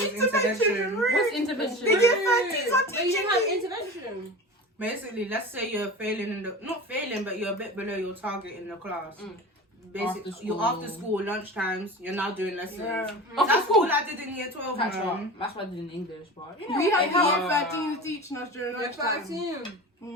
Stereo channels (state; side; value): normal; both; correlation 0.33